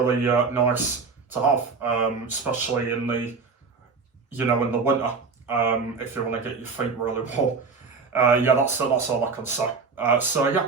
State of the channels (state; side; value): quieter; left; 4.8 dB